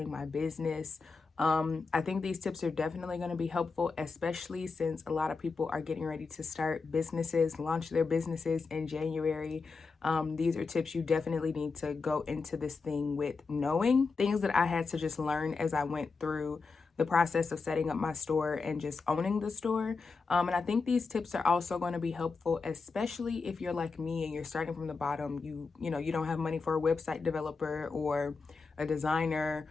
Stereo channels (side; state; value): right; quieter; 4.5 dB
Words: my business. I think these tips are definitely going to be helpful, especially since a lot of people are getting ready to start businesses, launch their businesses in January. These are tips you definitely need to go into this thing with knowing, things that I had to just learn as I went through the process of setting up my store and just owning the store. And I think these tips are also going to be helpful, especially if you're like me and you're starting from the bottom. You don't have money for a website developer or a designer